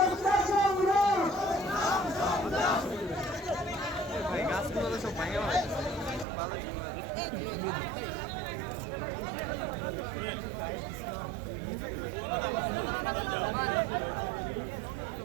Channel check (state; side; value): drops out; left; at 6.2 s